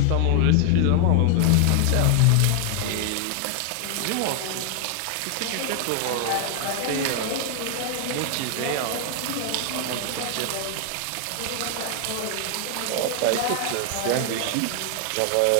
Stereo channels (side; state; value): both; different; correlation 0.00